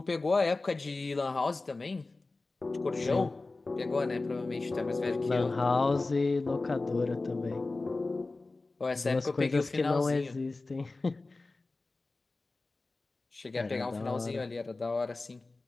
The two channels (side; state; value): right; quieter; 3.4 dB